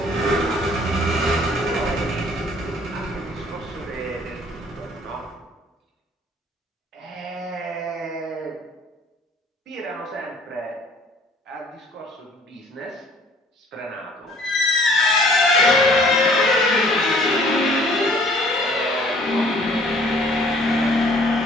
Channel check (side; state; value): both; normal; correlation 0.56